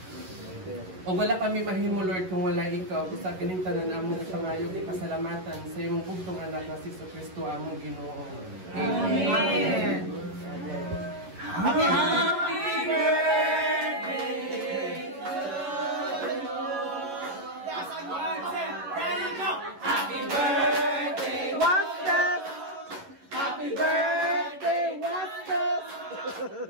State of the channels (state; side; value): late; left; 11 ms